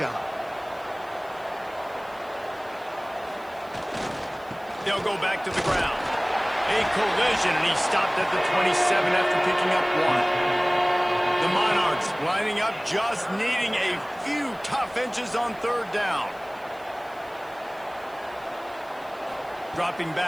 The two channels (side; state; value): right; noise; hiss, 27 dB below the sound